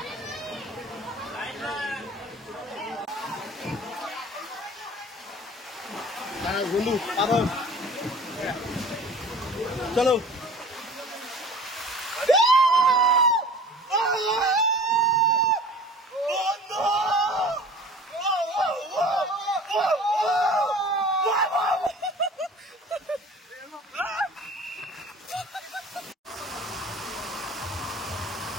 বন্ধু আবার চলো।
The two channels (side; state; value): both; normal; correlation 0.44